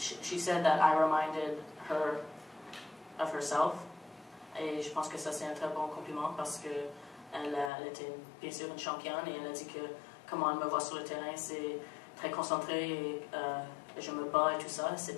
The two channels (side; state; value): right; drops out; at 7.7 s